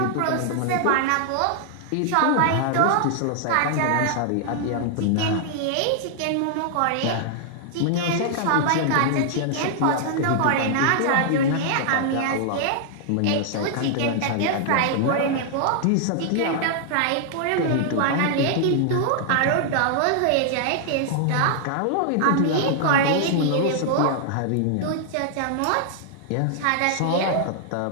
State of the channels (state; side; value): different; both; correlation -0.01